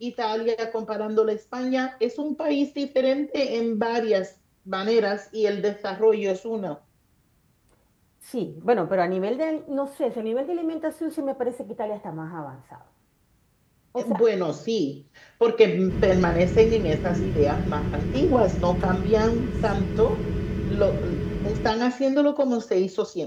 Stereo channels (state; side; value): identical; both; correlation 1.00